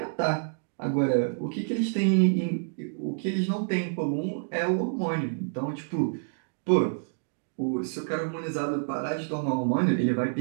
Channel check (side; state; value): left; silent; digital silence